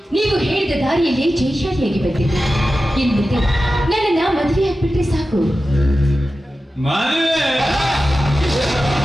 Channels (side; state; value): both; normal; correlation 0.93